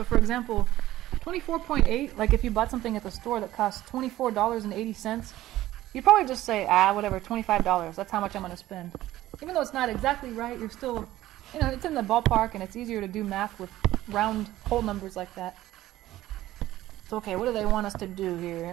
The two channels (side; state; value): left; quieter; 15.1 dB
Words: for example, 24.8, like if you bought something at the store that costs $24.80, you'd probably just say, whatever, $25, that's how much I'm going to spend. Even though it's not exactly right, you're still, it's in the ballpark, and it's easier to do math with round whole numbers like that. So okay, what do they want us to do